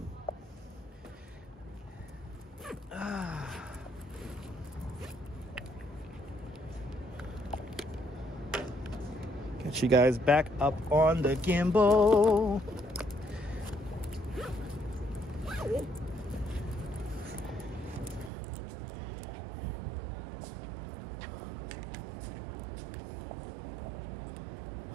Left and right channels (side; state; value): left; drops out; at 18.3 s